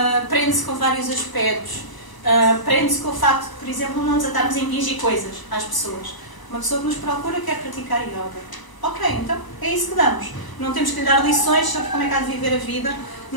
prende-se com vários aspectos. Prende-se com o facto de, por exemplo, não nos atarmos a impingir coisas às pessoas. Uma pessoa que nos procura quer praticar yoga. Ok, então é isso que damos. Não temos que lhe dar lições sobre como é que há de viver a vida,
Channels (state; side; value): late; right; 1.0 ms